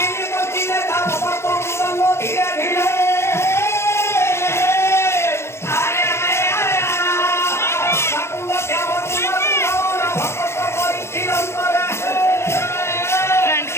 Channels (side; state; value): right; late; 0.13 ms